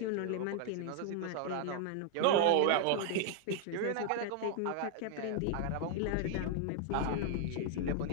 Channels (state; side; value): different; both; correlation 0.00